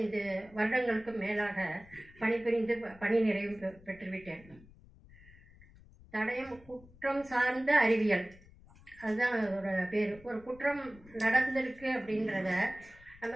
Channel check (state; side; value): noise; left; rumble, 23 dB below the sound